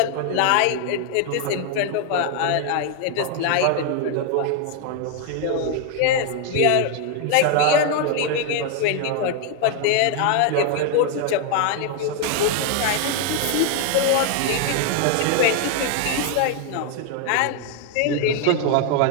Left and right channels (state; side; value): different; both; correlation 0.00